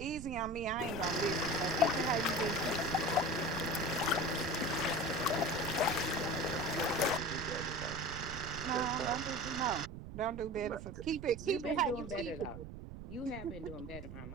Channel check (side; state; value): right; noise; rumble, 10 dB below the sound